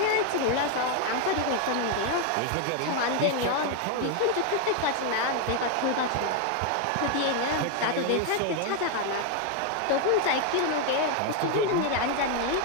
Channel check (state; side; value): different; both; correlation 0.01